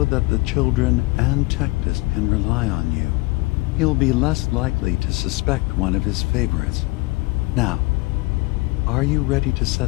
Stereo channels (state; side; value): quieter; right; 23.1 dB